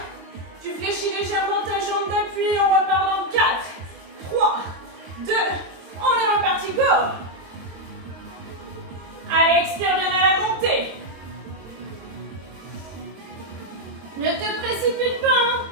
Tu fléchis légèrement ta jambe d'appui. On repart dans 4, 3, 2. On est reparti. Go. Allez, expire bien à la montée. Ne te précipite pas, hein.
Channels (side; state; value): left; late; 22 ms